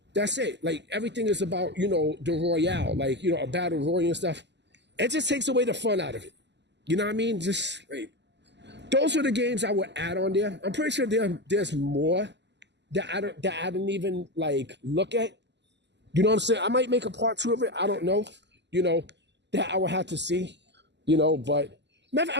Like, everything is about, the Royale, like, a battle royal and stuff. It just takes away the fun out of it. You know what I mean? Just, like, those are the games I would add on there. I'm pretty sure there's more that I didn't even, like, look at. You know what I'm saying? I might make a part 2 of it. I don't know. That I would have to see. But maybe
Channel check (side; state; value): left; late; 0.51 ms